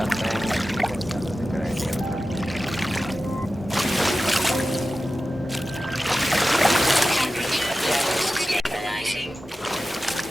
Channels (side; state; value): both; normal; correlation 0.94